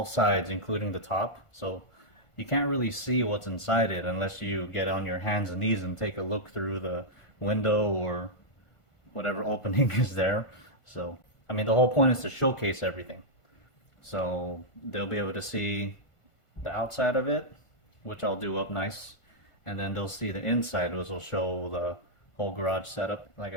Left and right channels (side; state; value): right; late; 1.5 ms